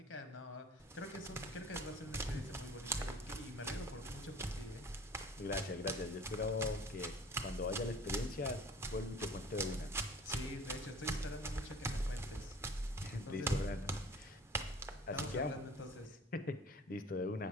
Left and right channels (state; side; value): normal; both; correlation 0.47